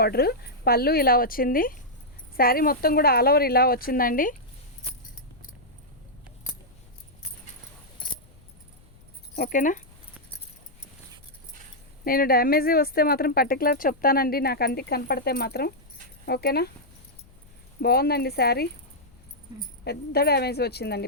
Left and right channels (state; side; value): noise; left; rumble, 27 dB below the sound